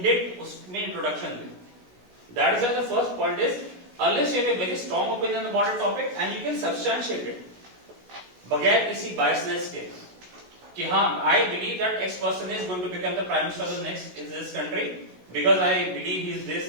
उसमें इंट्रोडक्शन दें। That is the first point is unless you have a very strong opinion about a topic and you can substantiate it बगैर किसी बायसनेस के कि हाँ I believe that X person is going to become the prime minister of the next in this country because I believe he is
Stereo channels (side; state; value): left; late; 16 ms